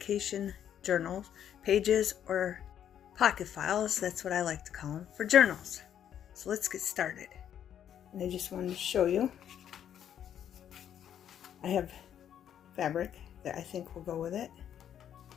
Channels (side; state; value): right; quieter; 9.7 dB